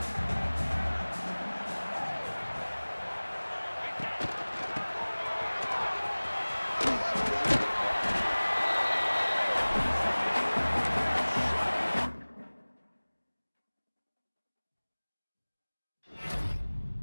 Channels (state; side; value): inverted; both; correlation -1.00